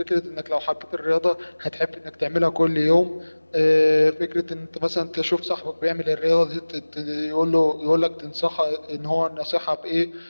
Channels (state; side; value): inverted; both; correlation -1.00